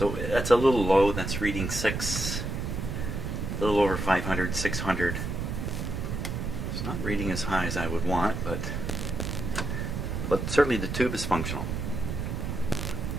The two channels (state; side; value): noise; right; rumble, 3 dB below the sound